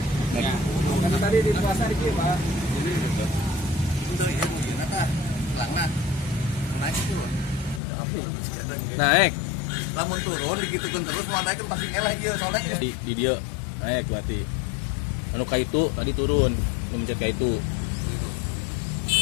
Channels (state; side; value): drops out; right; at 7.8 s